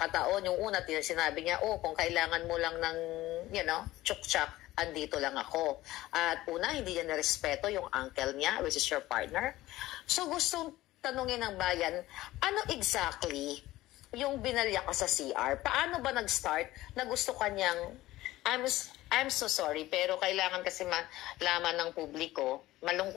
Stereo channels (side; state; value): right; quieter; 16.7 dB